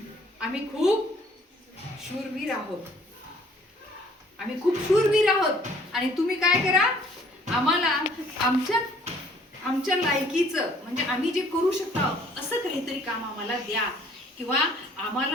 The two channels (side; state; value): both; normal; correlation 0.58